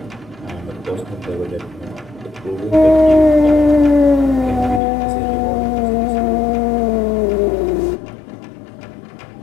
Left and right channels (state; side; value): drops out; right; at 4.8 s